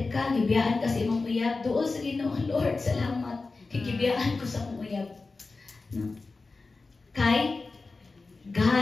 ka, gibiyaan ka sa imong uyab, duol sa Ginoo, Lord, salamat. Gibiyaan ko sa imong uyab. No? Kay,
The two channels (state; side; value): quieter; right; 3.8 dB